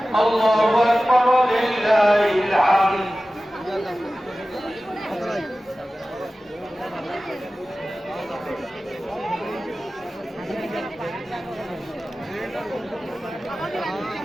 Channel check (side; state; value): both; normal; correlation 0.96